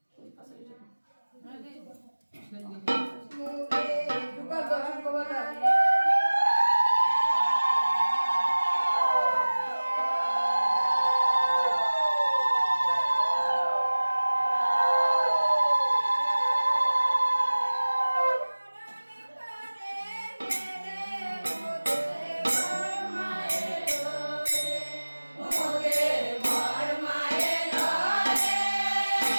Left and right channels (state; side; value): inverted; both; correlation -1.00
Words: ওই পাশে এটা মুগে দুকা দহন কবলা